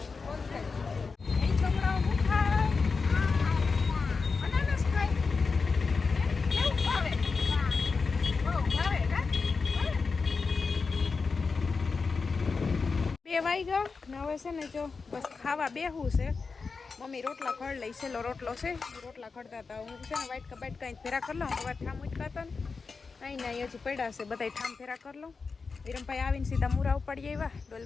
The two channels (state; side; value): quieter; right; 4.7 dB